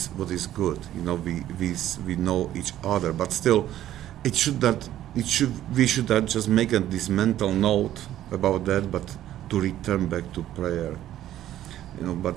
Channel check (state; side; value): quieter; left; 12.7 dB